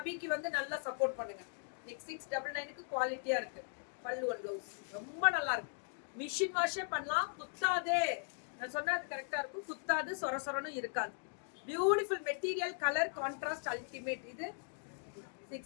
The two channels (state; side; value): silent; right; 52 dB below the other